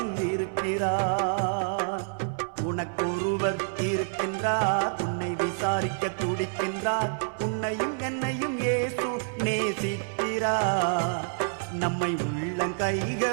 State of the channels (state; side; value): silent; left; 59 dB below the other